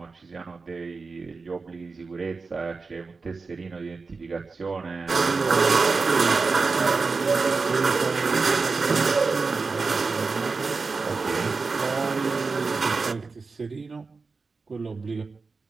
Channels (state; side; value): quieter; left; 4.3 dB